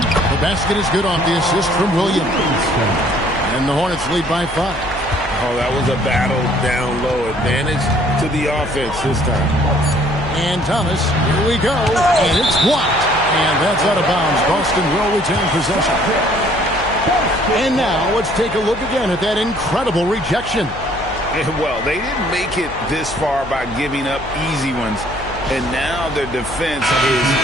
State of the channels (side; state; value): left; noise; hum, 14 dB below the sound